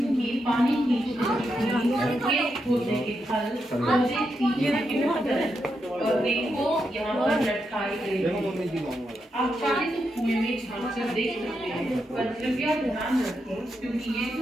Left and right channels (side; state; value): both; normal; correlation 0.84